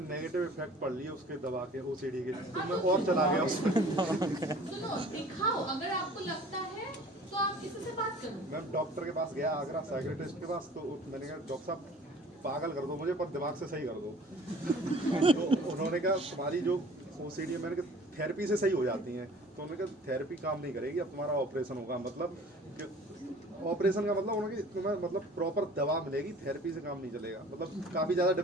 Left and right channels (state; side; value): normal; both; correlation 0.48